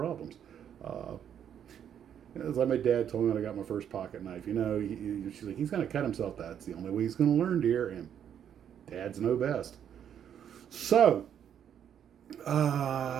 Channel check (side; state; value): left; quieter; 9.1 dB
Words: It's like my dad told me when I got my first pocket knife. She's like, he's going to cut himself. That's the only way he's going to learn, dear. And dads know best. So.